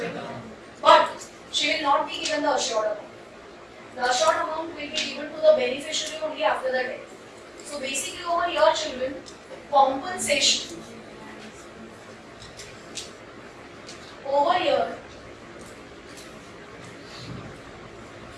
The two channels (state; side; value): identical; both; correlation 1.00